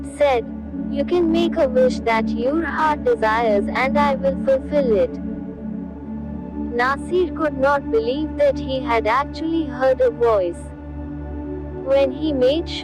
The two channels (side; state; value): both; identical; correlation 1.00